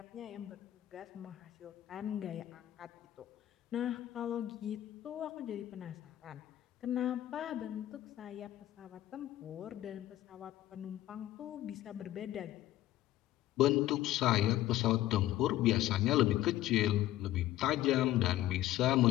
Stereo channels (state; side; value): quieter; right; 14.3 dB